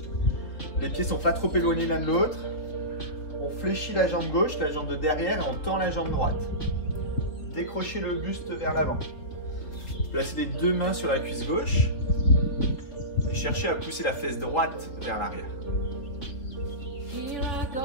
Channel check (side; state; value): right; late; 3.5 ms